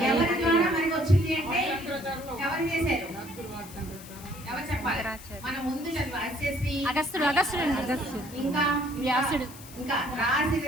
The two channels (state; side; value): noise; left; hiss, 17 dB below the sound